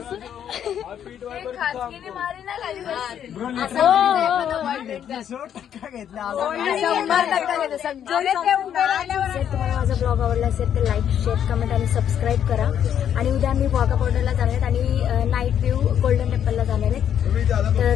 तुम्हाला माझा ब्लॉग आवडला असेल तर लाईक शेअर कमेंट आणि सबस्क्राईब करा. आणि उद्या आम्ही वाघा बॉर्डरला जाणार आहेत आणि नाईट व्ह्यू गोल्डन टेम्पलला जाणार आहेत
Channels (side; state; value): right; quieter; 9.4 dB